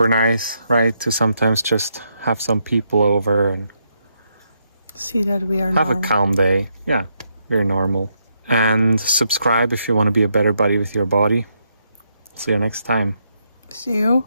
nice, right, to sometimes just have some people over and see that we are have a calm day. Yeah, we're normal. And subscribe if you want to be a better buddy with your body. See you next time. See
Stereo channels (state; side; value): inverted; both; correlation -0.79